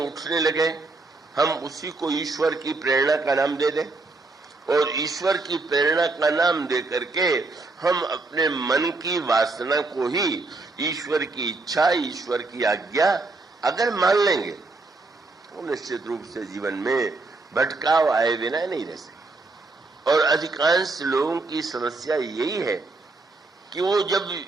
लगे, हम उसी को ईश्वर की प्रेरणा का नाम दे दें और ईश्वर की प्रेरणा का नाम दे करके हम अपने मन की वासना को ही ईश्वर की इच्छा, ईश्वर की आज्ञा अगर मान लेंगे तो निश्चित रूप से जीवन में भटकाव आए बिना नहीं रह सकते। और अधिकांश लोगों की समस्या यही है कि वो जब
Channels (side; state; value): left; quieter; 3.4 dB